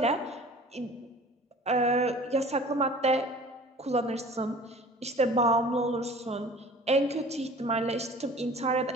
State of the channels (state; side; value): normal; both; correlation 0.45